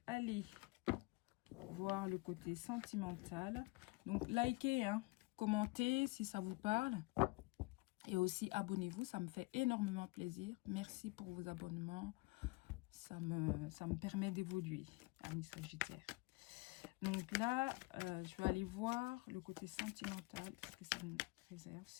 aller voir le côté sentimental. Donc, likez, hein, commentez si ça vous parle. Et aussi, abonnez-vous, ça me fait énormément plaisir. Merci pour vos abonnements. Ça me permet d'évoluer, amis Sagittaire. Donc là, je vais aller voir le côté sentimental. Est-ce que ça me réserve,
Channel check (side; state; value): right; quieter; 24.8 dB